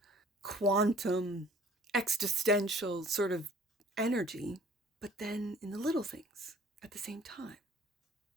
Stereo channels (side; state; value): both; normal; correlation 0.52